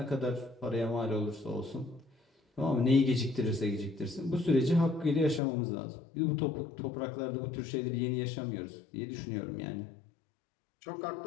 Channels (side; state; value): right; drops out; at 5.4 s